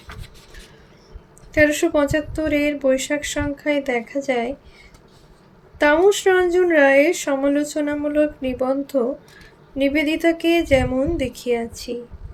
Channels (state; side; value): identical; both; correlation 1.00